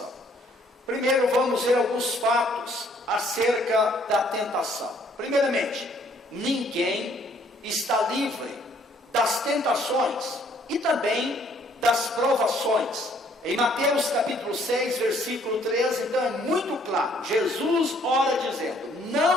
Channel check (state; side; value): normal; both; correlation 0.63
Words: Primeiro vamos ver alguns fatos acerca da tentação. Primeiramente, ninguém está livre das tentações e também das provações. Em Mateus capítulo 6, versículo 13, então é muito claro. Jesus ora dizendo: